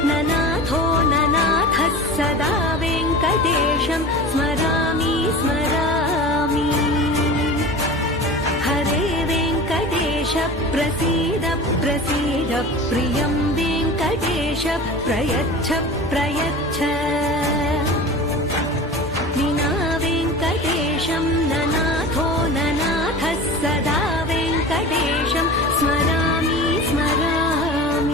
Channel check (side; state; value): both; normal; correlation 0.35